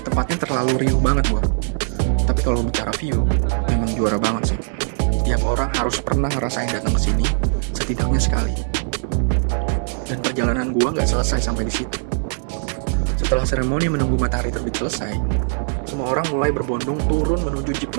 Tempatnya terlalu riuh banget gua. Tapi kalau bicara view, memang juara banget sih. Tiap orang harus pernah ngerasain datang ke sini setidaknya sekali. Dan perjalanan gua gak selesai sampai di situ. Setelah seremoni menunggu matahari terbit selesai, semua orang mulai berbondong turun menuju jeep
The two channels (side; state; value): left; silent; digital silence